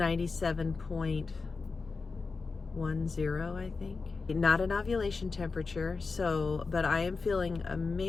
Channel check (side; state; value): right; quieter; 4.4 dB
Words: I think. Not an ovulation temperature, but I am feeling a